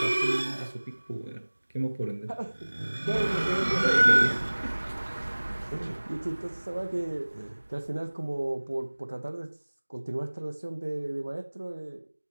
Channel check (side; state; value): both; inverted; correlation -1.00